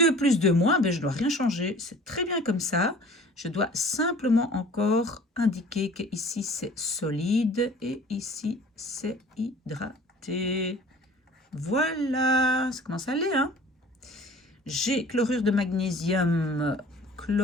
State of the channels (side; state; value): both; normal; correlation 0.47